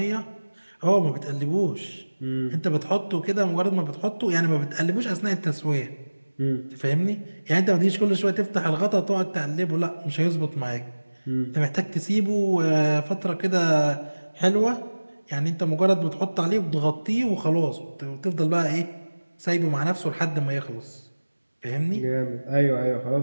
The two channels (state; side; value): inverted; both; correlation -1.00